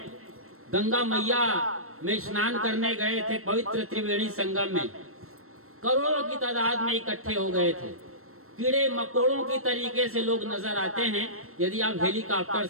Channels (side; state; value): left; late; 0.63 ms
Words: गंगा मैया में स्नान करने गए थे, पवित्र त्रिवेणी संगम में करोड़ों की तादाद में इकट्ठे हो गए थे। कीड़े मकोड़ों की तरीके से लोग नजर आते हैं। यदि आप हेलीकॉप्टर